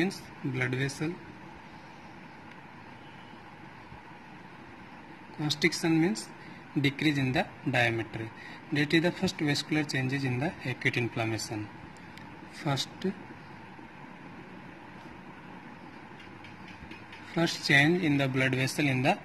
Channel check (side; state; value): both; identical; correlation 1.00